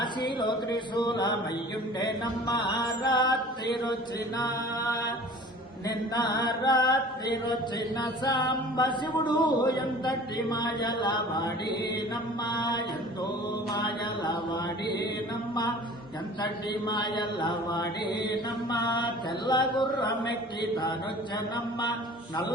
త్రిశూలమయ్యుండేనమ్మ రాత్రిరొచ్చిన నిన్న రాత్రిరొచ్చిన సాంబ శివుడు ఎంతటి మాయలవాడేనమ్మ ఎంతో మాయలవాడేనమ్మ ఎంతటి మాయలవాడేనమ్మ తెల్ల గుర్రమెక్కి తానొచ్చనమ్మ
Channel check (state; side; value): normal; both; correlation 0.44